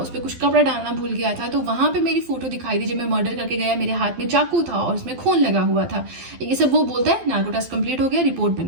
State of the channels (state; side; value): late; left; 12 ms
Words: पर कुछ कपड़ा डालना भूल गया था, तो वहां पे मेरी फोटो दिखाई दी जब मैं मर्डर करके गया, मेरे हाथ में चाकू था और उसमें खून लगा हुआ था। ये सब वो बोलता है, नार्को टेस्ट कंप्लीट हो गया, रिपोर्ट बन